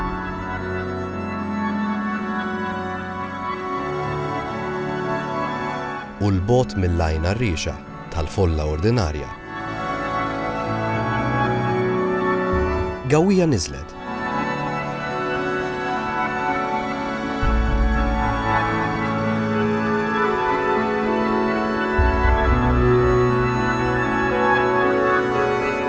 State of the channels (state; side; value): identical; both; correlation 1.00